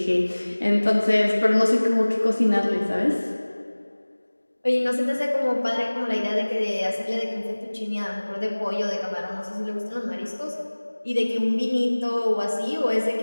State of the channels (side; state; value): both; inverted; correlation -1.00